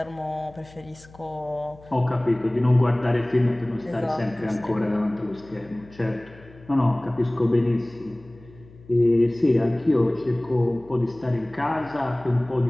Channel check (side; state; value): left; noise; hum, 23 dB below the sound